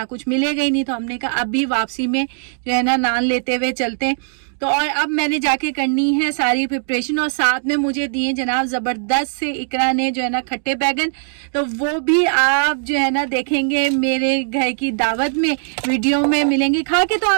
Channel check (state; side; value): silent; left; digital silence